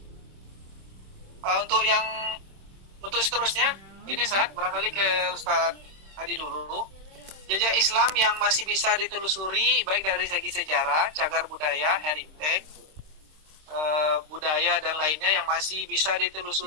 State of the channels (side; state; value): left; late; 26 ms